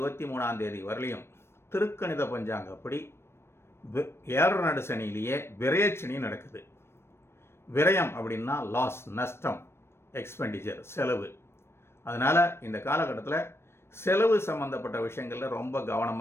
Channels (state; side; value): late; right; 0.12 ms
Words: தேதி வரலையும் திருக்கணித பஞ்சாங்கப்படி 7 நடு சனியிலேயே விரயச்சனி நடக்குது. விரயம் அப்படின்னா லாஸ், நஷ்டம், எக்ஸ்பெண்டிச்சர், செலவு. அதனால் இந்த காலகட்டத்தில் செலவு சம்மந்தப்பட்ட விஷயங்களில் ரொம்ப